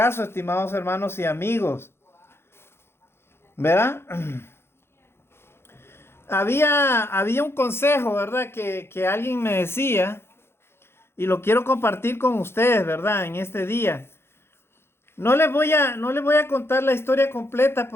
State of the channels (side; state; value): right; late; 0.12 ms